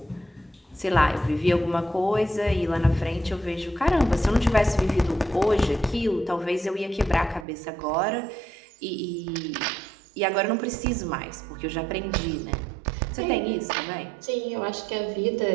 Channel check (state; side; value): drops out; left; at 7.5 s